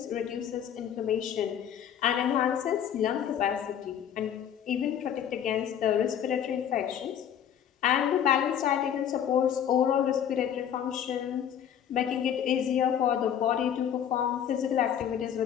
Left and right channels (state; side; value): quieter; right; 9.3 dB